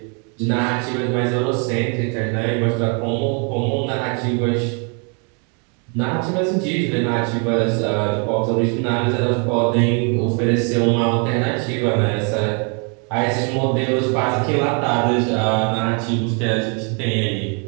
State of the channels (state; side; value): quieter; left; 37.4 dB